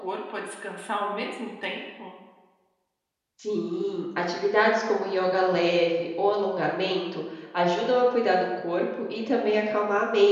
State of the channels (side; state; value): both; identical; correlation 1.00